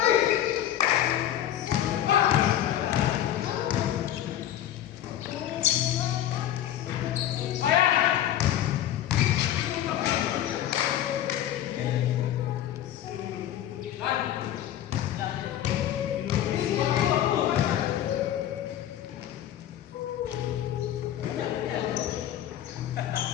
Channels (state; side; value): quieter; right; 11.7 dB